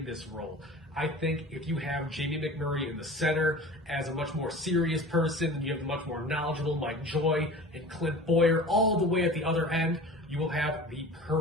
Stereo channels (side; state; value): both; normal; correlation 0.39